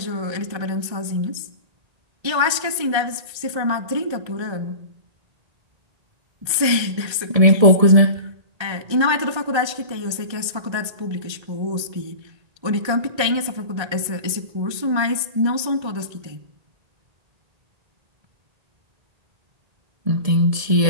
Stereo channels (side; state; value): left; late; 1.3 ms